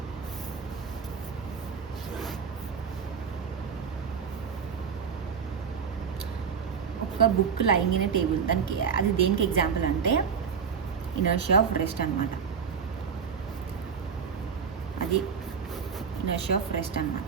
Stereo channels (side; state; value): left; quieter; 6.5 dB